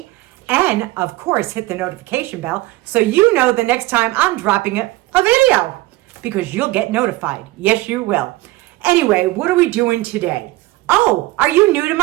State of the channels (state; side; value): quieter; left; 18.9 dB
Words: and of course hit the notification bell so you know the next time I'm dropping a video, because you'll get notified. Yes, you will. Anyway, what are we doing today? Oh, are you new to